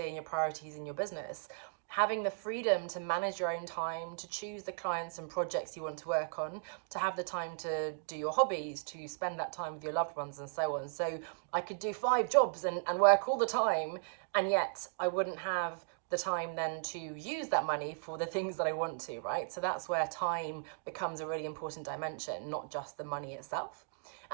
and your priorities in your business. Having the freedom to manage your own time, to choose the clients and projects you want to work on, to have the time to do your hobbies, to spend that time with your loved ones and so on. So I could do 5 jobs and work all the time, and yet I wouldn't have the time then to use that money for the things that I want to, right? So that's where time becomes a really important dimension, not just the money itself.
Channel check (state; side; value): silent; left; digital silence